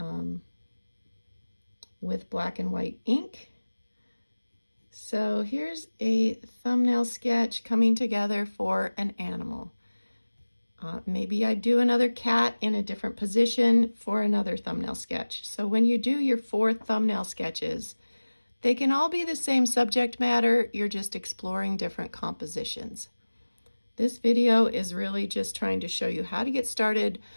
with black and white ink. So here's a thumbnail sketch coming together for an animal. Maybe I do another cat in a different position for another thumbnail sketch. So when you do your 4 thumbnail sketches, they can all be the same subject matter, you're just exploring different compositions. This video is really just trying to show you how to get started,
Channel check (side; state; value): both; inverted; correlation -1.00